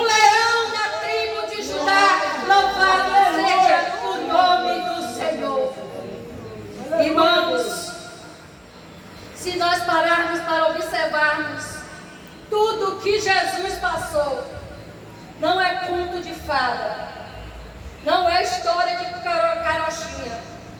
leão da tribo de Judá. Louvado seja o nome do Senhor. Irmãos, se nós pararmos para observarmos tudo que Jesus passou, não é conto de fada, não é história de carochinha,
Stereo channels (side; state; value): both; identical; correlation 1.00